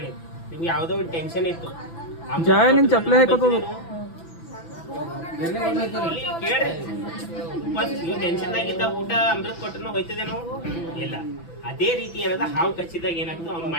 ನಿಮ್ಗೆ ಯಾವ್ದೋ ಒಂದು ಟೆನ್ಷನ್ ಇತ್ತು. ಕೇಳ್ರಿ, ನೀವು ಟೆನ್ಷನ್ ಆಗಿದ್ದ ಊಟ ಅಮೃತ ಕೊಟ್ಟರು ಹೋಯ್ತದೇನೋ ಇಲ್ಲ. ಅದೇ ರೀತಿ ಏನದ ಹಾವು ಕಚ್ಚಿದಾಗ ಏನಾಗ್ತದೆ, ಅವ್ನ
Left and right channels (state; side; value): late; right; 6.0 ms